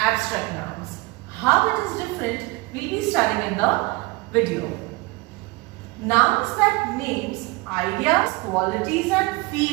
nouns. How it is different, we will be studying in the video. Nouns that names ideas, qualities and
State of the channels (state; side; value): quieter; left; 23.7 dB